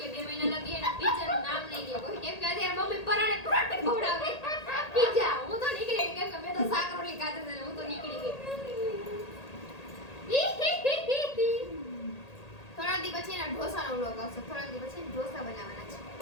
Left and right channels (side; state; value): right; late; 1.8 ms